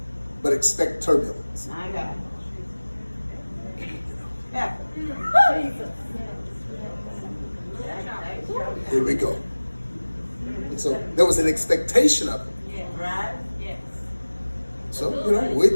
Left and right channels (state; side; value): inverted; both; correlation -1.00